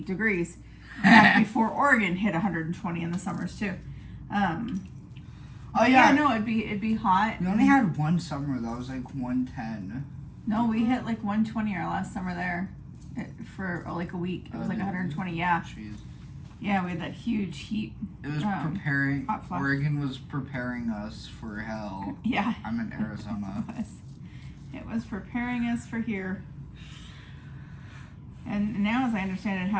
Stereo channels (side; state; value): both; identical; correlation 1.00